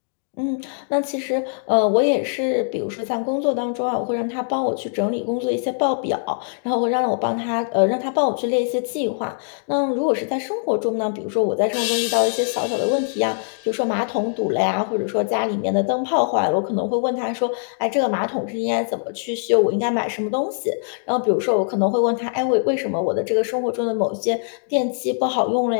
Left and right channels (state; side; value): silent; right; digital silence